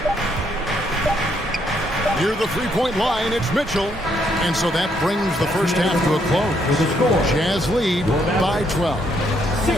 Near the 3-point line, it's Mitchell. And so that brings the first half to a close. Jazz lead by 12.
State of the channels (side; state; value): both; normal; correlation 0.73